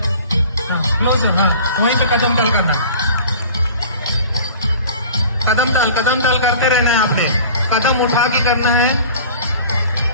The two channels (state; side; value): inverted; both; correlation -0.44